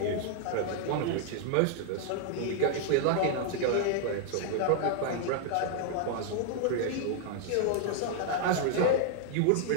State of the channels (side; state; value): both; different; correlation 0.00